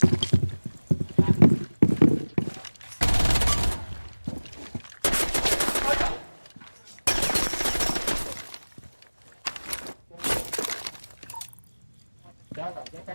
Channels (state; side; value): inverted; both; correlation -1.00